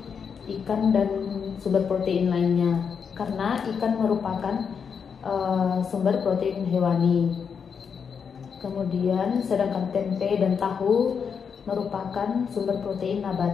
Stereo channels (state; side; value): quieter; right; 6.5 dB